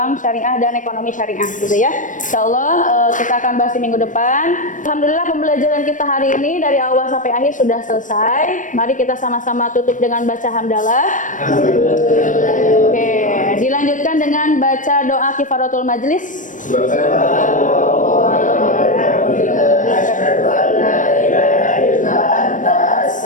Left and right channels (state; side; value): late; right; 0.37 ms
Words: syariah dan ekonomi syariah gitu ya. Insya Allah kita akan bahas di minggu depan. Alhamdulillah pembelajaran kita hari ini dari awal sampai akhir sudah selesai. Mari kita sama-sama tutup dengan baca hamdalah. Oke, dilanjutkan dengan baca doa kifaratul majlis.